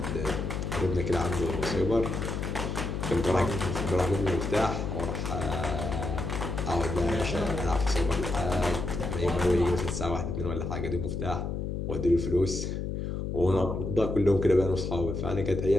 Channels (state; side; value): noise; left; hum, 3 dB below the sound